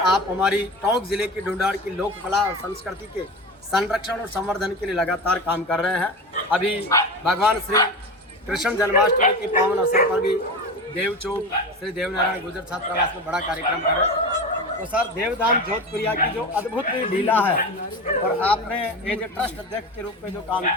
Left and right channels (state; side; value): normal; both; correlation 0.27